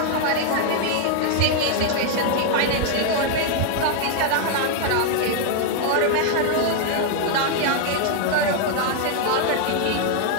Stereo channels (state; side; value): different; both; correlation 0.00